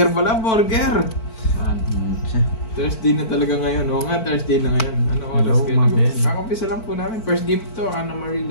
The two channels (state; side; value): late; right; 4.5 ms